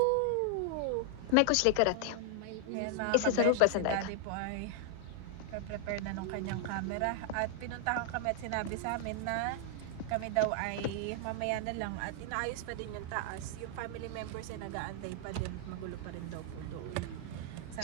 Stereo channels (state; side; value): different; both; correlation 0.00